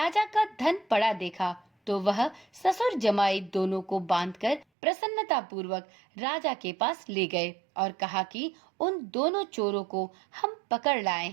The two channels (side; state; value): left; drops out; at 4.7 s